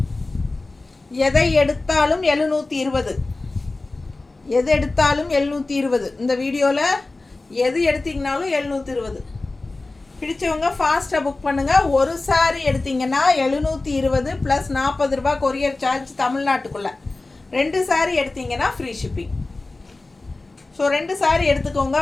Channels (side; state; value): right; quieter; 3.2 dB